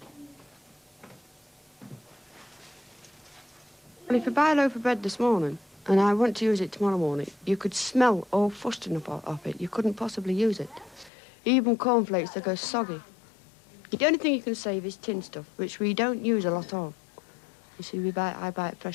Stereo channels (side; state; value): right; drops out; at 11.1 s